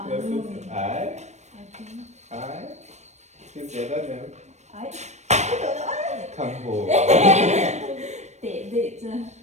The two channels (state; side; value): late; left; 0.33 ms